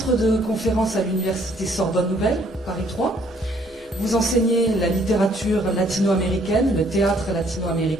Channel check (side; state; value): both; normal; correlation 0.64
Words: de conférence à l'université Sorbonne Nouvelle, Paris 3. Vous enseignez la littérature latino-américaine, le théâtre